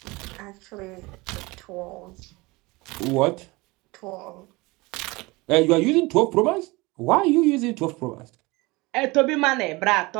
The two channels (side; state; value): left; quieter; 23.3 dB